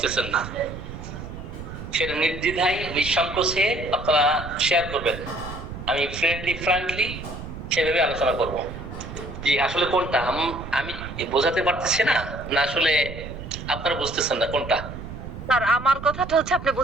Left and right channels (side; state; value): right; noise; rumble, 10 dB below the sound